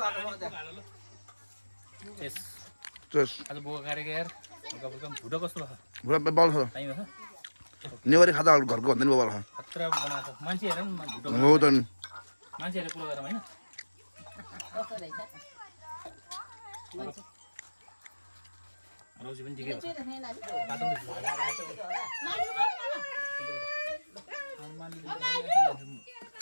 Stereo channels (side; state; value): both; inverted; correlation -1.00